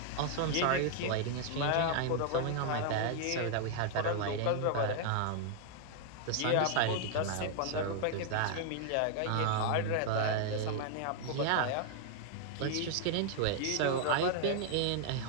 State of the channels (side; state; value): both; different; correlation 0.00